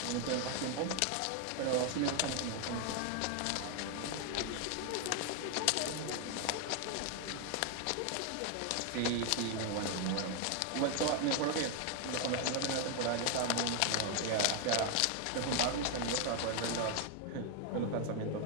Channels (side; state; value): both; different; correlation 0.01